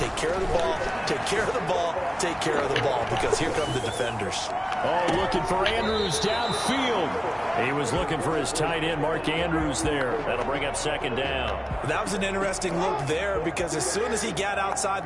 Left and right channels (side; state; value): both; identical; correlation 1.00